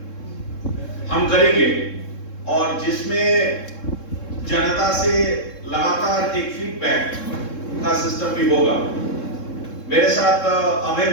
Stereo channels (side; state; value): right; late; 3.7 ms